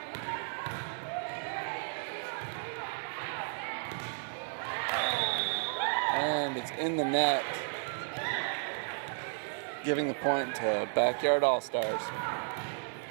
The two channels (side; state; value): left; silent; 55 dB below the other